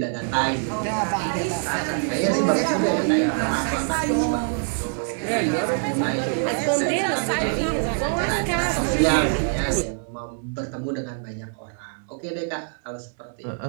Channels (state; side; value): silent; left; 62 dB below the other